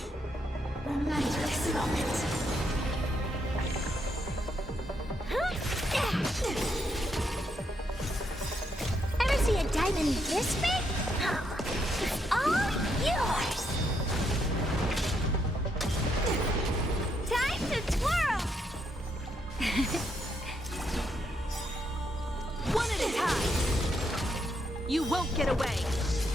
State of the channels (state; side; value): normal; both; correlation 0.77